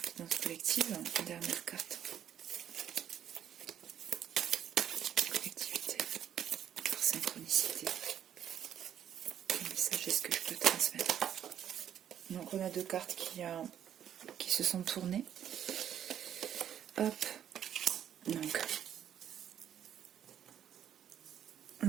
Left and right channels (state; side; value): quieter; left; 9.9 dB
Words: Guidance collective, dernière carte. Synchronicité. Quel message est-ce que je peux transmettre? Donc on a deux cartes qui se sont tournées. Hop. Donc